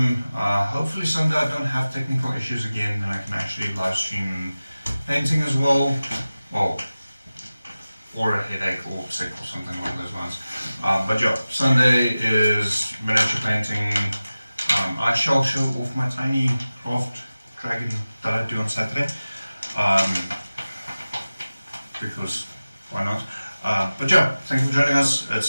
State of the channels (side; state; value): both; inverted; correlation -0.96